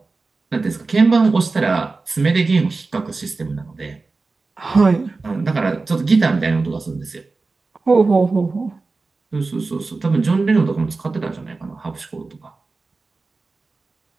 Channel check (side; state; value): left; quieter; 3.8 dB